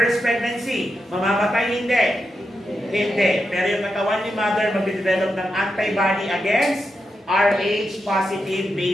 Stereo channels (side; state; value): both; normal; correlation 0.87